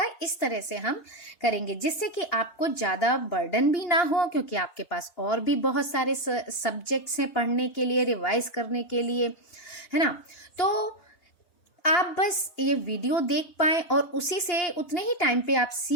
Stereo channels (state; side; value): late; right; 2.8 ms